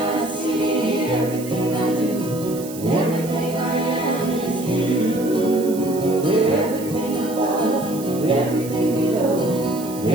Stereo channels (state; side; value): noise; right; hiss, 15 dB below the sound